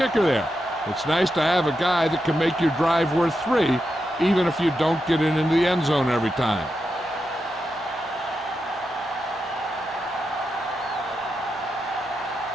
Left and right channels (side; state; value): both; normal; correlation 0.87